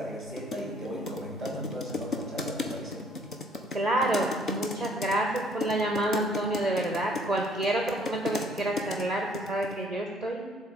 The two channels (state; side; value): normal; both; correlation 0.61